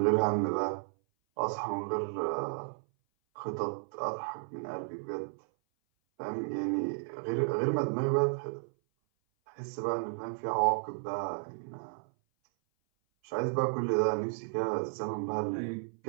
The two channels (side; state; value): left; silent; 56 dB below the other